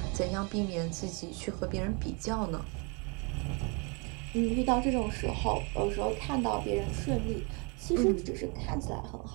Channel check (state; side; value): quieter; left; 33.0 dB